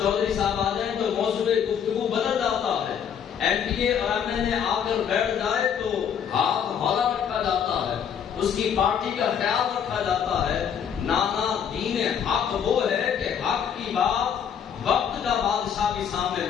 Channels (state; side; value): quieter; right; 8.1 dB